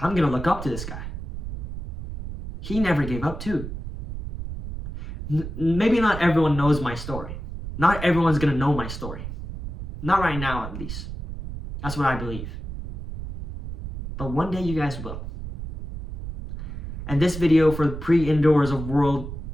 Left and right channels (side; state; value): right; noise; rumble, 8 dB below the sound